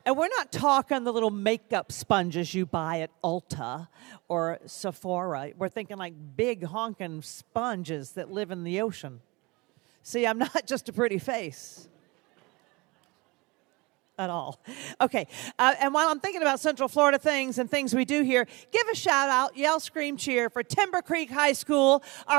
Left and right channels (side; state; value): left; quieter; 24.9 dB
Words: And we're not talking the little makeup sponges you buy at Ulta or Sephora. We're thinking like big honking sponges that live in the ocean. See, I'm not just a pretty face at all. Okay, and while I'm thinking about Central Florida things and things we do here, give a shout out, yell, scream, cheer for Timber Creek High School,